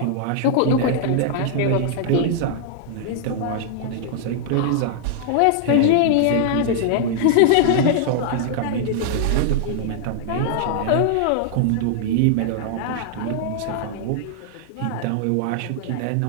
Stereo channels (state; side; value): different; both; correlation -0.01